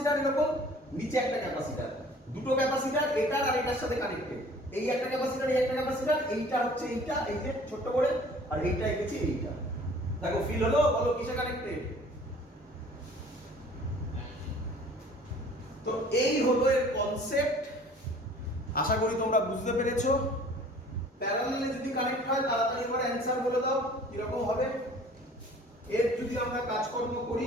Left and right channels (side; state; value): both; normal; correlation 0.50